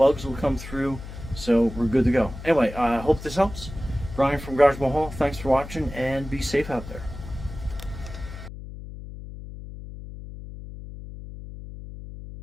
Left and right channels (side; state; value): left; noise; hum, 12 dB below the sound